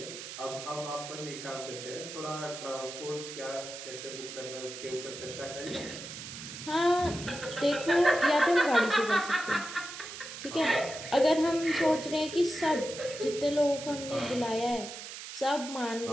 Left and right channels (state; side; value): noise; right; hiss, 10 dB below the sound